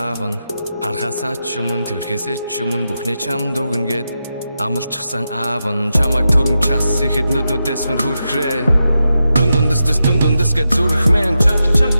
нь харахасаа ч өмнө тэрхээсээ ч өмнө бүхнээ чамд өгнө гэд амлчихсан аав нь чамайг түрэн час ихэд нүднүүдээс мөр хүрхрээ дундундэс гэж зүрхмэн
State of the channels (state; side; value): inverted; both; correlation -0.88